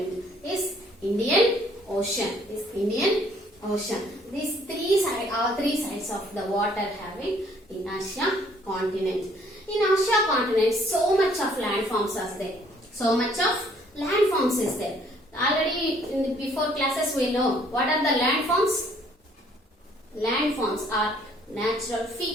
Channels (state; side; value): normal; both; correlation 0.62